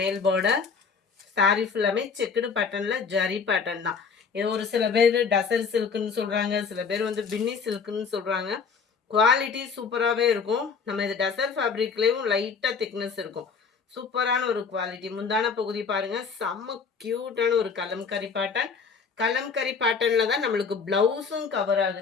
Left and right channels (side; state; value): right; quieter; 5.5 dB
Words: பார்டர் சாரி ஃபுல்லாமே செக்குடு பேட்டர்ன்ல ஜரி பேட்டர்ன் தான். இது ஒரு சில பேர் டசர் சில்க்குன்னு சொல்றாங்க, சில பேர் வந்து பின்னி சில்க்குன்னு சொல்றாங்க. குவாலிட்டி சூப்பராகவே இருக்கும். நம்ம இது டசர் ஃபேப்ரிக்லேயும் லைட்டாக திக்னஸ் இருக்கும். சூப்பரான ஒரு குவாலிட்டி. முந்தான பகுதி பாருங்க, செம்ம கியூட்டான ஒரு கலம்கரி பேட்டர்ன். கலம்கரி பேட்டர்னில் தான் நம்மளுக்கு ப்ளவுஸும் கவர்